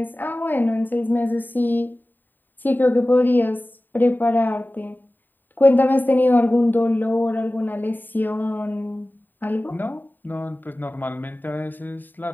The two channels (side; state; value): right; late; 0.090 ms